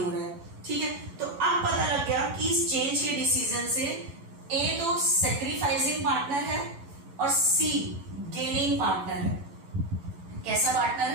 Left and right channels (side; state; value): left; late; 11 ms